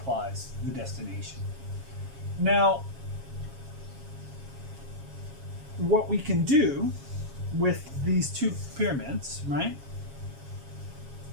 the destination. Now, what we can do with these two pyramids, right,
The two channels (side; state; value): left; late; 7.3 ms